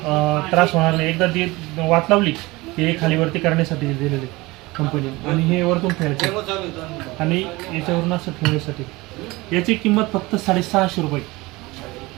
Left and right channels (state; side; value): quieter; left; 21.9 dB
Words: त्रास होणार नाही। एकदा ती वात लावली की हे खालीवरती करण्यासाठी दिलेले कंपनी। आणि हे वरतून ठेवायचे आणि याच्यावरून असं ठेवण्यासाठी। याची किंमत फक्त 650 रुपये।